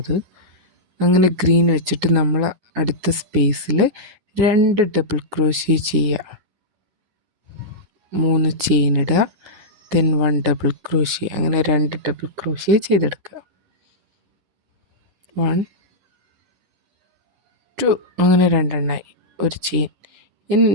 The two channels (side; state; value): left; late; 10 ms